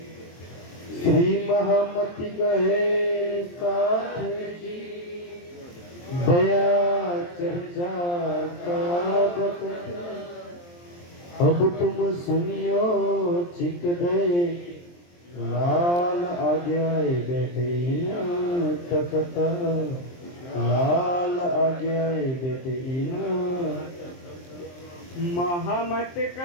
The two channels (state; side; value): late; right; 23 ms